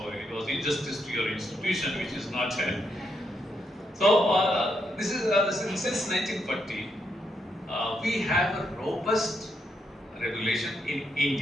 it was injustice to your institution, which is not held. So this is since 1940, we have a robust regulation in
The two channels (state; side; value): normal; both; correlation 0.79